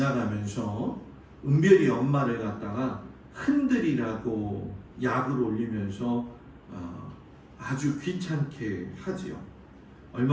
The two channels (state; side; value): identical; both; correlation 1.00